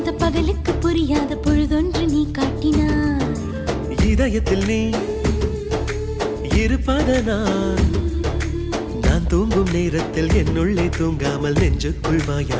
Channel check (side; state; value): both; identical; correlation 1.00